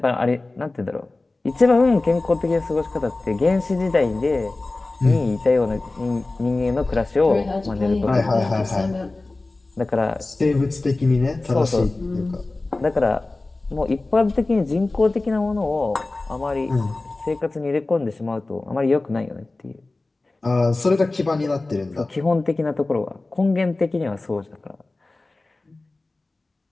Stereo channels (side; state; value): right; quieter; 3.1 dB